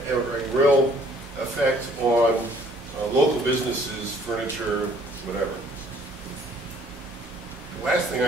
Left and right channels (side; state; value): both; normal; correlation 0.58